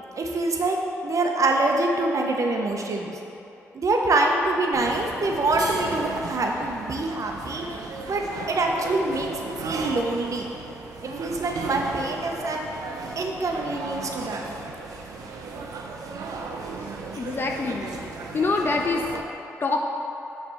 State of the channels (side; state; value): both; normal; correlation 0.64